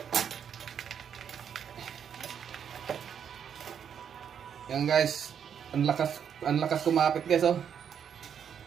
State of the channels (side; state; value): left; quieter; 8.0 dB